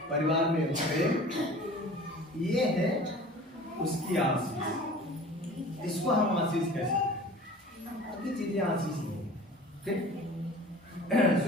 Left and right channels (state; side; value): normal; both; correlation 0.42